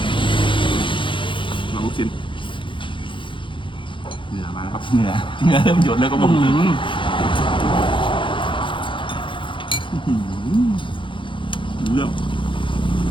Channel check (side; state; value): right; late; 0.24 ms